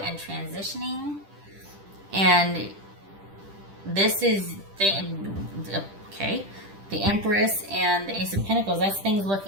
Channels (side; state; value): left; late; 10 ms